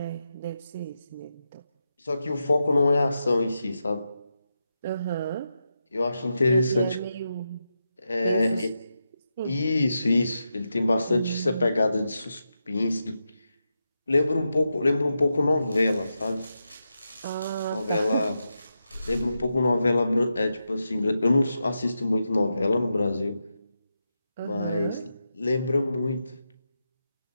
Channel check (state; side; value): inverted; both; correlation -0.88